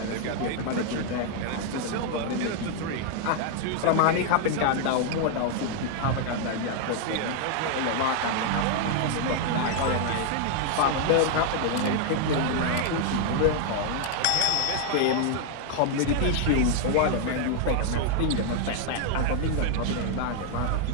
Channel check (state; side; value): different; both; correlation 0.00